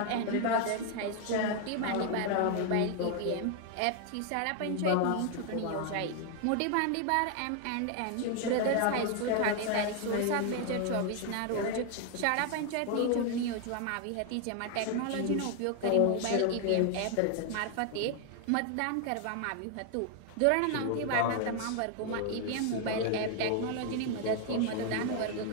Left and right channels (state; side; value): different; both; correlation 0.00